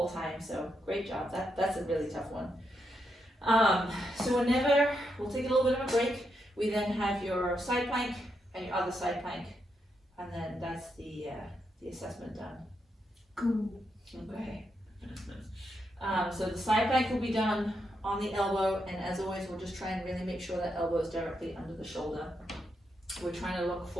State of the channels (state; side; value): normal; both; correlation 0.82